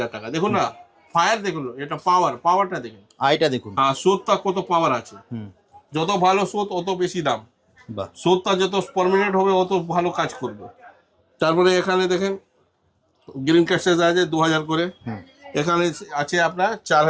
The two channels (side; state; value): both; identical; correlation 1.00